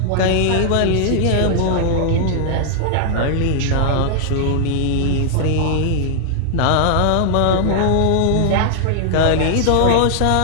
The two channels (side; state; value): both; different; correlation -0.01